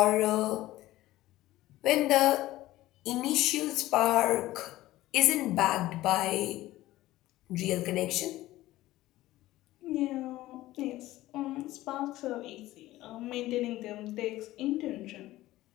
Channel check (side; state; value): right; quieter; 16.4 dB